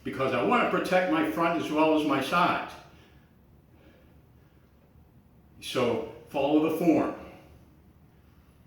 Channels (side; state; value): both; identical; correlation 1.00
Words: because I want to protect my front as well as my sides. So follow the form.